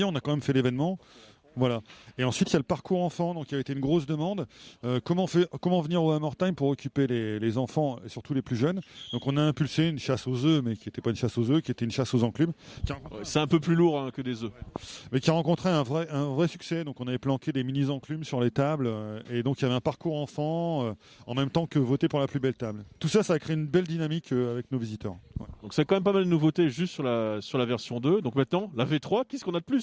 on a quand même fait l'événement. Voilà. Et ensuite, il y a le parcours enfant, donc il a été une grosse demande. Comment venir au Hammer Time pour occuper les enfants, et surtout les plus jeunes. Donc on a impulsé une chasse aux œufs, mais qui n'était pas une chasse aux œufs, qui était une chasse aux enclumes. C'est un peu plus lourd que des œufs. Mais qui a rencontré un vrai succès. Donc on avait planqué des mini-enclumes sur les tables. Et donc il y avait un parcours enfant, en même temps que voter pour la plus belle table. Tout ça, ça a créé une belle dynamique avec nos visiteurs. Ouais. Donc c'est quand même pas mal de nouveautés juste sur la version 2. Donc maintenant, la V3, qu'est-ce qu'on a de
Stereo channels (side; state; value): both; identical; correlation 1.00